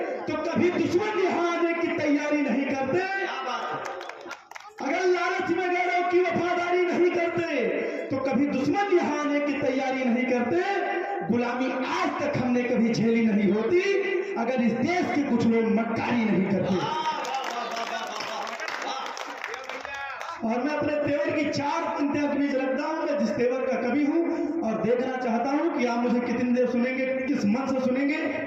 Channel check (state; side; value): identical; both; correlation 1.00